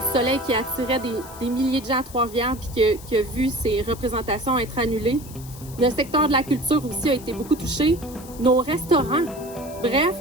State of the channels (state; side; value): noise; left; hiss, 18 dB below the sound